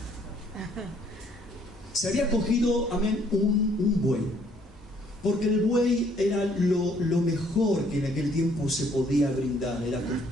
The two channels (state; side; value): normal; both; correlation 0.64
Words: Se había cogido, amén, un buey, porque el buey era lo mejor que en aquel tiempo se podía brindar. Era